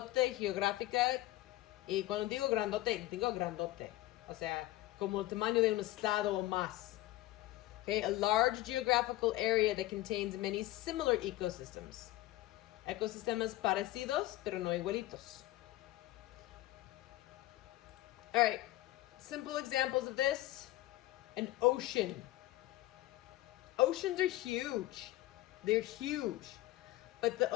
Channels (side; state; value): right; quieter; 17.0 dB